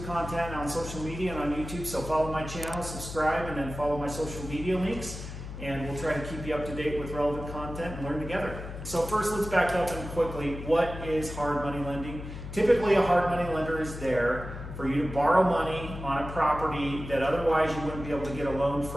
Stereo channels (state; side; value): noise; left; hum, 9 dB below the sound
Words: content on social media and on YouTube, so follow my channel, subscribe, and then follow my social media links. And we'll try to keep you up to date with relevant content and learn together. So first, let's back up and quickly, what is hard money lending? Typically, a hard money lender is there for you to borrow money on a property that otherwise you wouldn't be able to get a loan